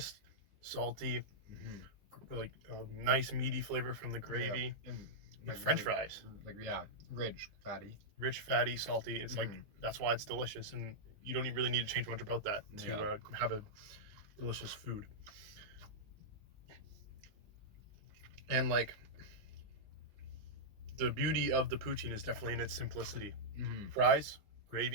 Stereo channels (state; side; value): late; left; 20 ms